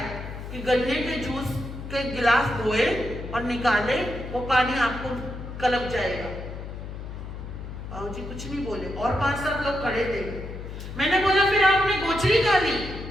कि गन्ने के जूस के गिलास धोए और निकाले, वो पानी आपको कलप जाएगा। बाबूजी कुछ नहीं बोले और 5-7 लोग खड़े थे। मैंने बोला फिर आपने गोचरी का ली?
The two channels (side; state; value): left; noise; hum, 9 dB below the sound